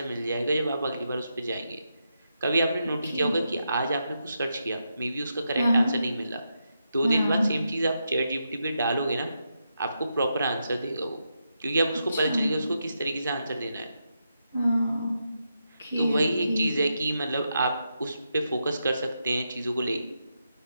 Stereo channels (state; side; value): inverted; both; correlation -0.84